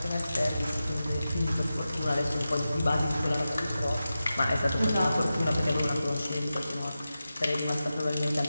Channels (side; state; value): both; inverted; correlation -0.92